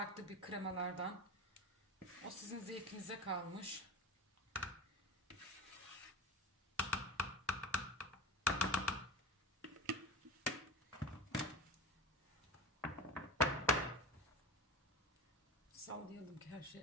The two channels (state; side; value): normal; both; correlation 0.28